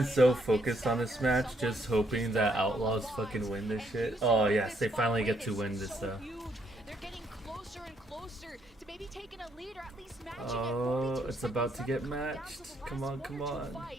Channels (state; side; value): normal; both; correlation 0.72